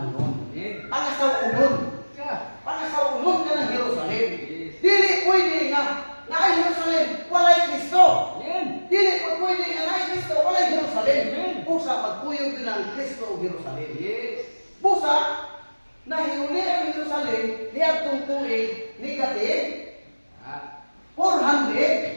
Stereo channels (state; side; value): inverted; both; correlation -1.00